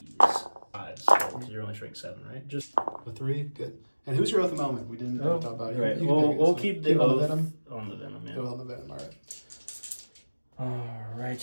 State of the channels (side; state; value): both; inverted; correlation -1.00